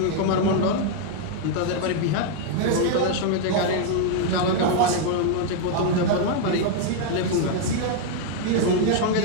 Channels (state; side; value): different; both; correlation 0.00